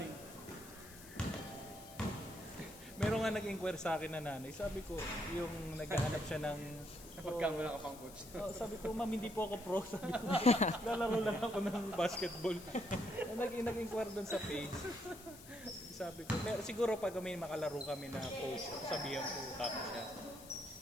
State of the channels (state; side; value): noise; left; hiss, 17 dB below the sound